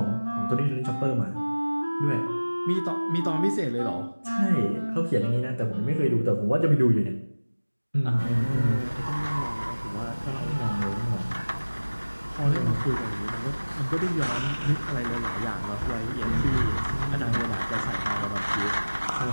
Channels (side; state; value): both; inverted; correlation -1.00